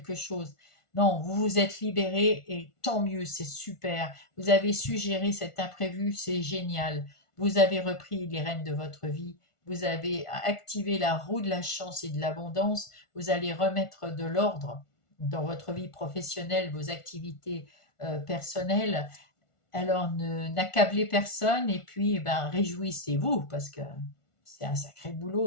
chose. Non, vous vous êtes libéré et tant mieux, c'est super. Vous avez su gérer cet imprévu, c'est génial. Vous avez repris les rênes de votre vie, vous avez activé la roue de la chance et de l'abondance, vous allez remettre de l'ordre dans votre vie professionnelle, vos activités personnelles. Alors n'accablez personne et puis réjouissez-vous parce que c'est un sacré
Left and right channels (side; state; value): right; late; 1.4 ms